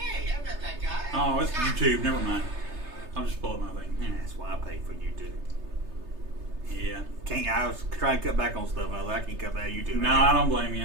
I met that guy. Oh, it's YouTube. Never mind. I'll just pull up my thing. Yeah. That's why I pay for YouTube. Yeah. I was trying to cut back on stuff, and I was like, I can't cut back on YouTube. No, I don't blame you.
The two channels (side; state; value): left; late; 3.3 ms